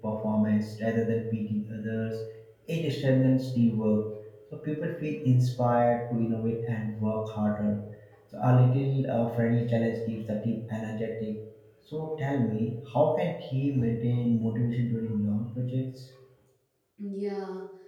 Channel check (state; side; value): identical; both; correlation 1.00